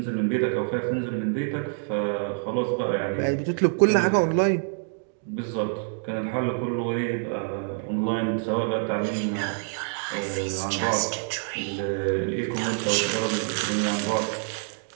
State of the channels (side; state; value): left; silent; 61 dB below the other